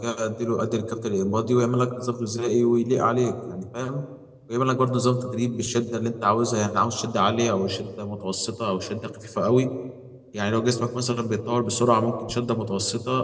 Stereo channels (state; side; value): identical; both; correlation 1.00